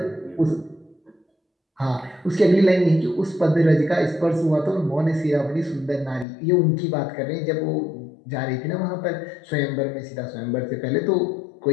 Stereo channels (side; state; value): right; drops out; at 6.2 s